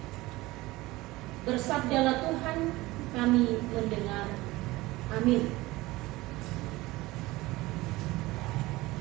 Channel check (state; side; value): quieter; left; 19.7 dB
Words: Bersabdalah Tuhan, kami mendengar. Amin.